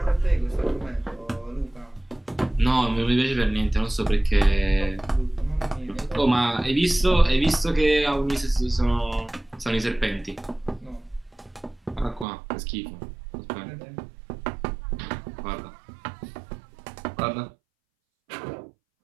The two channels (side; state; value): left; drops out; at 12.2 s